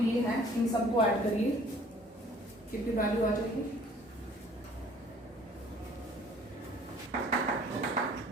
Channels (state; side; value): normal; both; correlation 0.55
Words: ये हैं इन सबको ऐड करिए, कितनी वैल्यू आ जाएगी?